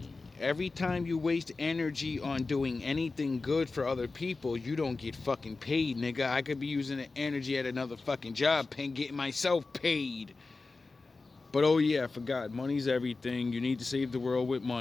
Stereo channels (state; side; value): quieter; right; 3.8 dB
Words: Every time you waste energy on doing anything good for other people, you don't get fucking paid, nigga. I could be using the energy at another fucking job, getting myself paid. But oh yeah, I forgot, money's everything. You need to save the world with